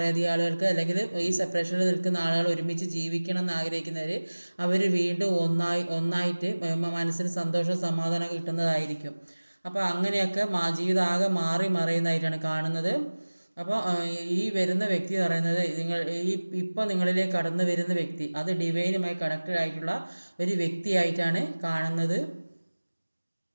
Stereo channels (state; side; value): inverted; both; correlation -1.00